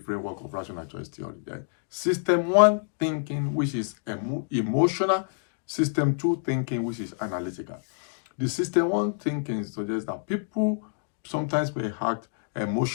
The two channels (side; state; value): right; silent; digital silence